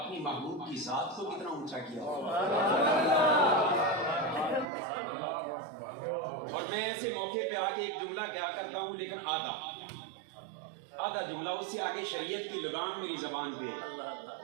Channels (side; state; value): left; drops out; at 4.7 s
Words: محبوب کی ذات کو کتنا اونچا کیا. اور میں ایسے موقع پہ آگے ایک جملہ کیا کرتا ہوں, لیکن آدھا جملہ, اس سے آگے شریعت کی لگام میری زبان پہ,